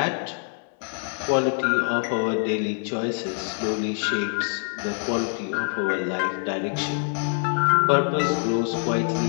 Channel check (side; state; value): right; silent; 57 dB below the other